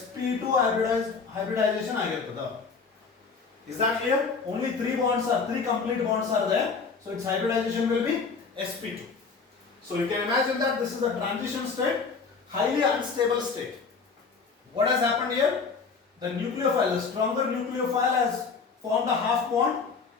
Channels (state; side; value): quieter; right; 5.0 dB